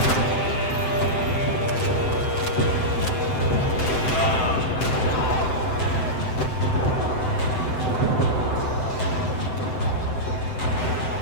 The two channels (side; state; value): right; late; 7.8 ms